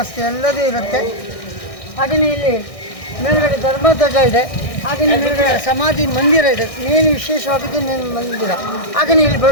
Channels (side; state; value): right; late; 1.6 ms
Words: ಎಲ್ಲದೂ ಇರುತ್ತೆ. ಹಾಗೆಯೇ ಇಲ್ಲಿ ಮೇಲ್ಗಡೆ ಧರ್ಮಧ್ವಜ ಇದೆ. ಹಾಗೆಯೇ ಮೇಲ್ಗಡೆ ಸಮಾಧಿ ಮಂದಿರ ಇದೆ. ಏನು ವಿಶೇಷವಾಗಿದ್ದು ಮಂದಿರ. ಹಾಗೆಯೇ ಇಲ್ಲಿ